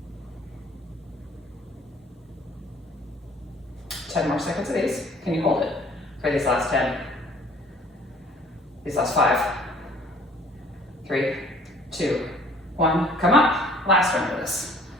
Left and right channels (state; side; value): normal; both; correlation 0.54